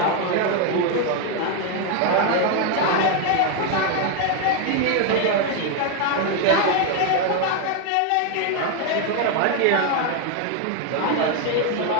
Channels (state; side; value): different; both; correlation 0.01